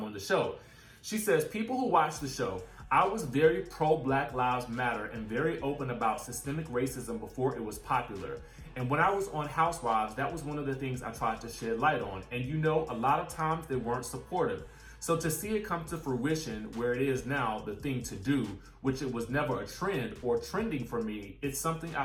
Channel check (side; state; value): both; identical; correlation 1.00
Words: on the show. She says, people who watch the show, I was very pro Black Lives Matter and very open about systemic racism before it was popular. And when I was on Housewives, that was one of the things I tried to shed light on. And a lot of times they weren't supportive. So to see it come to fruition where it is now the thing to do, which it was never a trend or trending for me, it's something